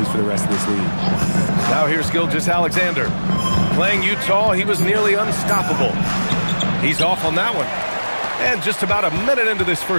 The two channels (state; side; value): inverted; both; correlation -1.00